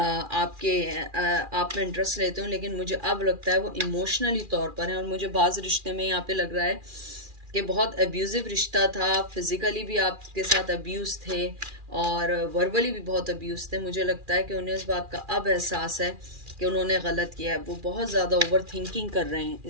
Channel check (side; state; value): left; late; 2.4 ms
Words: में इंटरेस्ट लेते हो, लेकिन मुझे अब लगता है वो इमोशनली तौर पर हैं। और मुझे बाज़ रिश्ते में यहाँ पे लग रहा है कि बहुत अब्यूज़िव रिश्ता था, फिज़िकली भी आपके साथ अब्यूज़ थे और वर्बली भी बहुत अब्यूज़ थे। मुझे लगता है कि उन्हें इस बात का अब एहसास है कि उन्होंने गलत किया है। वो बहुत ज़्यादा ओवर थिंकिंग कर रहे हैं